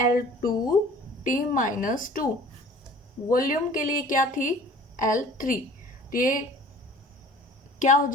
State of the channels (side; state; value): both; normal; correlation 0.47